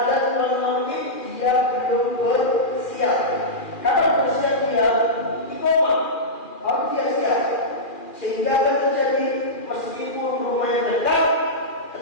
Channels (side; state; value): right; late; 2.4 ms